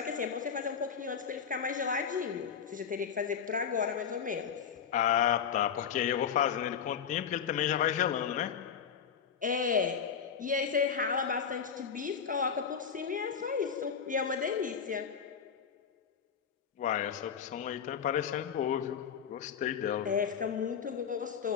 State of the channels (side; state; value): right; quieter; 7.3 dB